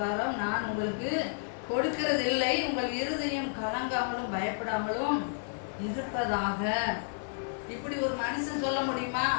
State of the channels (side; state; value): right; silent; digital silence